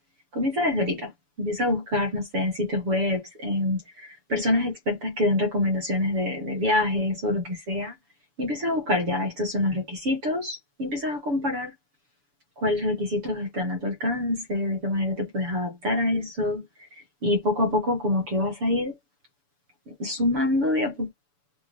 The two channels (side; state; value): left; late; 7.0 ms